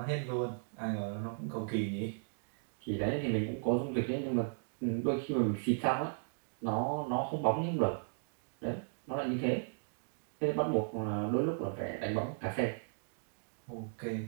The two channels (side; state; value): left; silent; digital silence